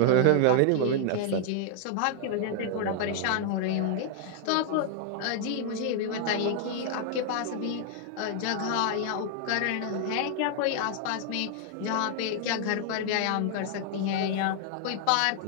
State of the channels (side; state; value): both; different; correlation 0.00